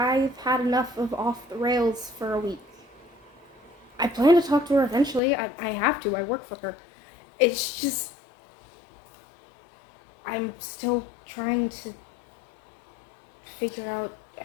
had enough of off the rails for a week. I plan to talk to her eventually. I have to. I work for her. It's just, I'm still trying to figure out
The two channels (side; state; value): right; drops out; at 5.2 s